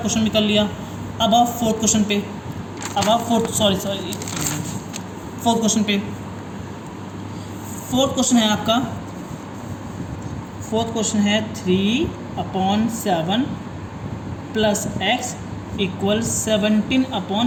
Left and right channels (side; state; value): both; identical; correlation 1.00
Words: क्वेश्चन भी कर लिया। अब आप फोर्थ क्वेश्चन पे, फोर्थ क्वेश्चन पे। फोर्थ क्वेश्चन है आपका, फोर्थ क्वेश्चन है 3/7 + x इक्वल